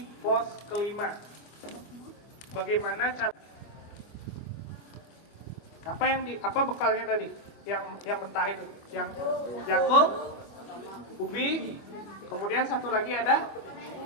pos kelima. Bagaimana cara? Apa bekalnya tadi? Yang mentah itu, yang jagung, ubi, kemudian satu lagi ada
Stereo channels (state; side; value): late; right; 25 ms